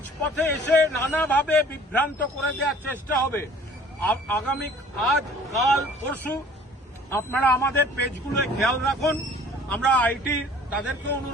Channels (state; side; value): normal; both; correlation 0.50